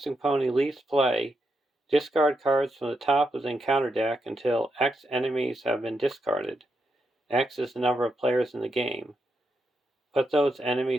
Pony leaves play, discard cards from the top of the encounter deck until X enemies have been discarded. X is the number of players in the game. Put those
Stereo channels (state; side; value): normal; both; correlation 0.83